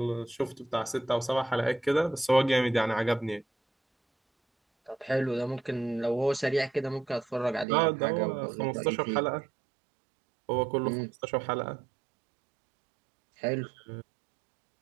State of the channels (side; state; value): left; drops out; at 7.7 s